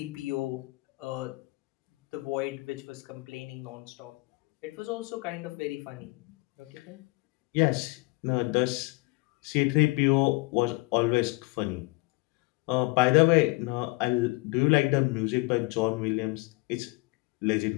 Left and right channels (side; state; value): right; quieter; 24.8 dB